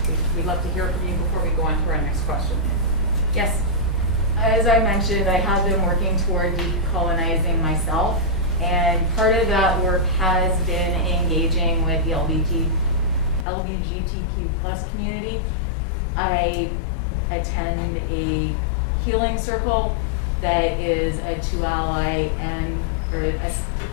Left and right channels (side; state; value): right; drops out; at 13.5 s